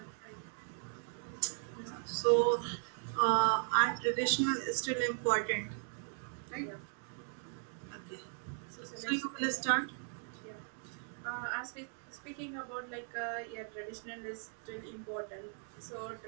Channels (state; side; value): silent; left; 53 dB below the other